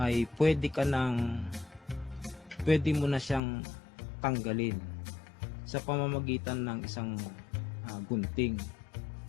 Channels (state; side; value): drops out; right; at 3.4 s